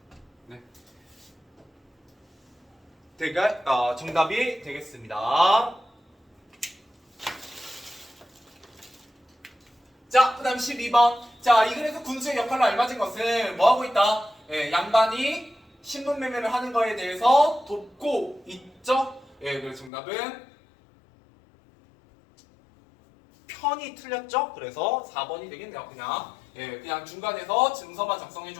정답이 되겠습니다. 자, 그 다음 12번. 자, 이 글에서 군수의 역할로 알맞은 것은 뭐하고 있다? 양반이 신분 매매를 하는 거에 대해서 돕고 있죠? 그래서 정답은 편이 틀렸죠? 그래서 4번이 되겠네요. 그냥 중간에서 증서만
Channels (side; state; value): right; drops out; at 19.9 s